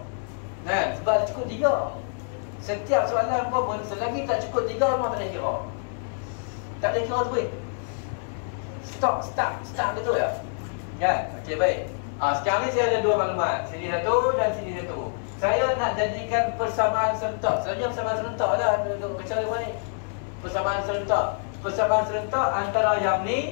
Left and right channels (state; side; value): silent; right; 61 dB below the other